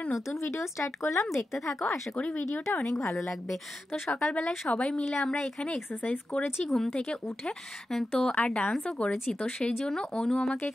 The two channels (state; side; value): normal; both; correlation 0.91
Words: নতুন ভিডিও স্টার্ট করলাম। দেখতে থাকো, আশা করি ভিডিওটা অনেক ভালো লাগবে। তো সকালবেলায় সবাই মিলে আমরা এখানে এক্সারসাইজ করেছি ঘুম থেকে উঠে, তো আর ডান্সও করেছি। তো সেই জন্য অনু আমাকে